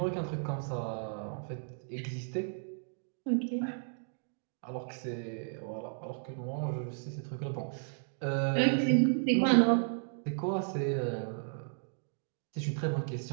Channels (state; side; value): silent; left; digital silence